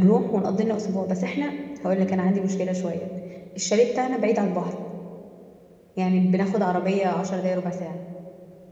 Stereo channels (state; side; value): identical; both; correlation 1.00